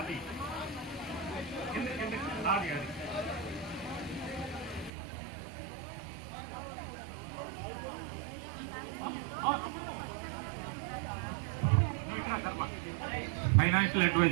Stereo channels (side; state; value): left; drops out; at 4.9 s